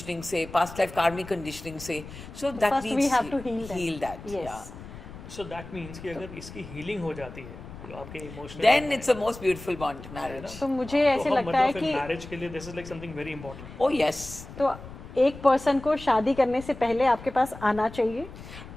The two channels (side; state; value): left; noise; rumble, 14 dB below the sound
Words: से, पास्ट लाइफ कार्मिक कंडीशनिंग से. So that First we have to heal that. That. Yes. So that means कि अगर इसकी हीलिंग हो जाती है तो आपके emotional then it's a most beautiful bond, marriage. तो मुझे ऐसे लगता है कि मैरिज के लिए this is like something very important. Oh yes. तो एक पर्सन को शादी करने से पहले आपके पास आना चाहिए